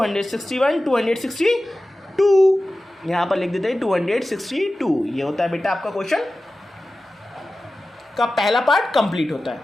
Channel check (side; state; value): both; normal; correlation 0.95